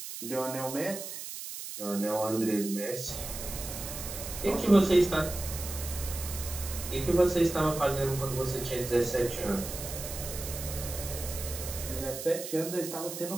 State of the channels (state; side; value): noise; right; hiss, 8 dB below the sound